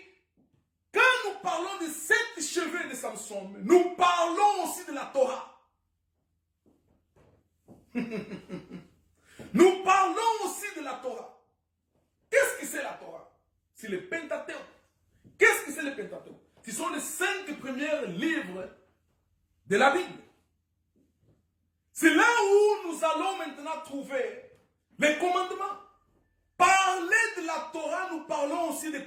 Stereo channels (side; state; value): both; identical; correlation 1.00